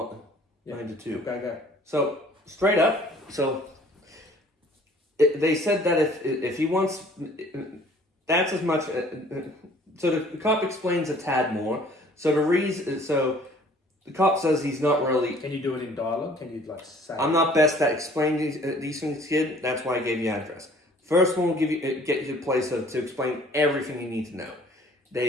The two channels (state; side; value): normal; both; correlation 0.54